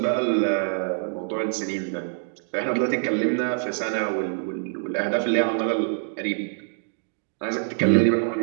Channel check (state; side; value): silent; left; digital silence